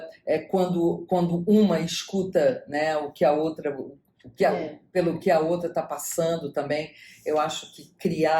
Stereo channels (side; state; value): both; identical; correlation 1.00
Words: quando uma escuta, né, o que a outra... pelo que a outra está passando também. Eu acho que